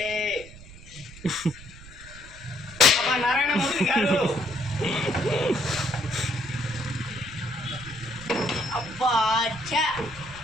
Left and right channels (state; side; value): noise; right; rumble, 17 dB below the sound